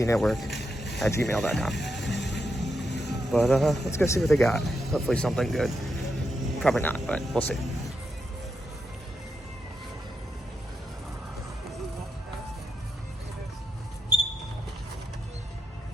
But let's go see what they got. Hopefully something good. Probably not, but we'll see.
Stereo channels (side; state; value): both; normal; correlation 0.84